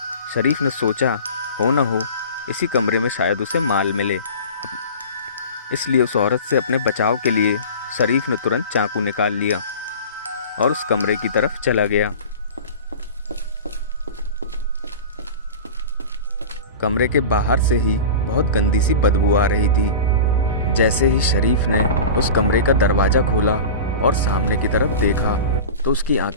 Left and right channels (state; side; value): inverted; both; correlation -0.34